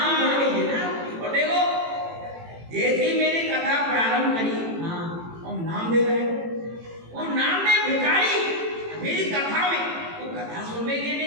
और देखो जैसी मेरी कथा प्रारंभ करी और नामदेव है वो नामदेव भिखारी मेरी कथा में वो कथा सुनने के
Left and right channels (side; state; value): left; late; 18 ms